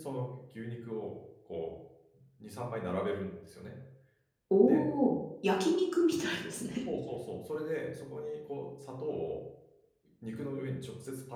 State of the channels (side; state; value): both; identical; correlation 1.00